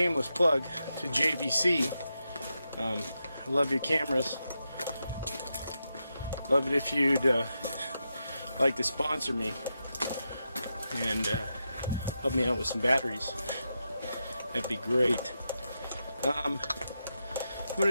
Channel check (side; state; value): both; inverted; correlation -0.87